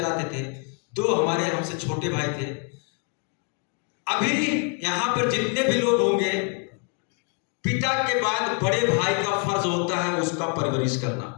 थे, 2 हमारे हमसे छोटे भाई थे। अभी यहां पर जितने भी लोग होंगे, पिता के बाद बड़े भाई का फर्ज होता है उसका परवरिश करना,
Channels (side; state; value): right; quieter; 37.9 dB